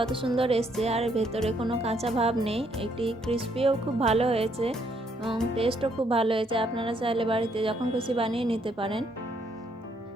সুন্দর এসছে আর ভেতরে কোনো কাঁচা ভাব নেই। এটি ক্রিস্পিও খুব ভালো হয়েছে এবং টেস্টও খুব ভালো হয়েছে। আপনারা চাইলে বাড়িতে যখন খুশি বানিয়ে নিতে পারেন।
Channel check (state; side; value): normal; both; correlation 0.71